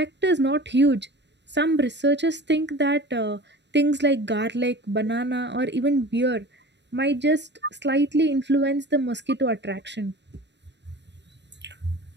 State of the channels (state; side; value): late; left; 0.51 ms